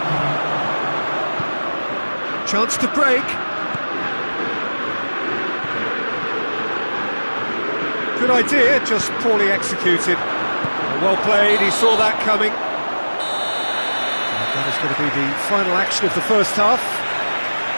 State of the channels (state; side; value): inverted; both; correlation -1.00